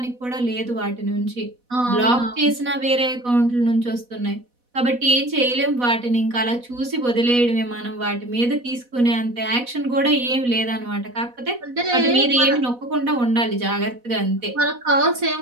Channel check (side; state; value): left; late; 4.1 ms